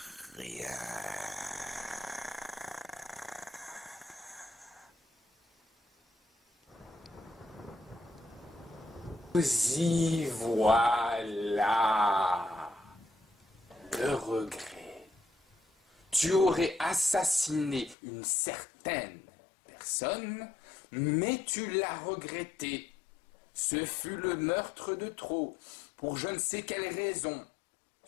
rien. Y voilà le regret. Tu aurais assassiné une certaine personne, mais tu l'as regretté. Ce fut le meurtre de trop, pour je ne sais quelle raison.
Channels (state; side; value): drops out; right; at 17.9 s